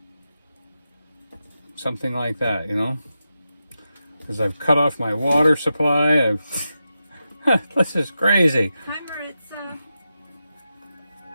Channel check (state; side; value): inverted; both; correlation -0.90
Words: Something like that, you know? Because I've cut off my water supply. This is crazy. Hi, Maritza.